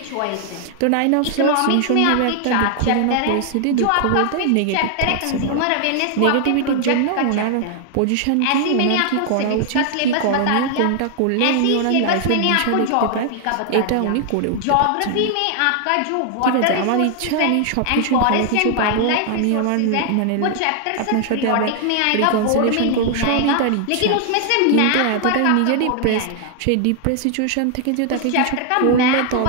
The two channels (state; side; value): different; both; correlation 0.00